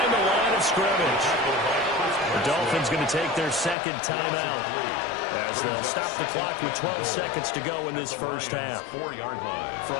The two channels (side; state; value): right; drops out; at 3.8 s